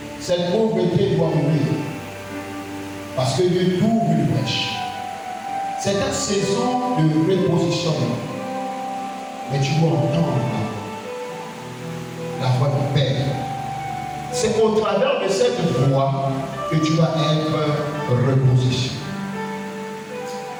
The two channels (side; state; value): both; identical; correlation 1.00